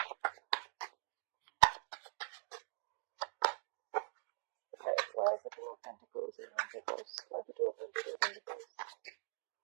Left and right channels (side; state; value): left; silent; digital silence